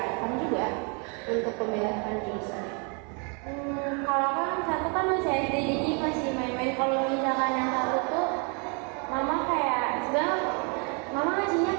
juga untuk pemilihan jurusan. Kalau kan satu kan masih SD, jadi masih main-main. Kalau misalkan yang satu tuh mama kayak sebenarnya mama ngasihnya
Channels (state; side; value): quieter; left; 35.9 dB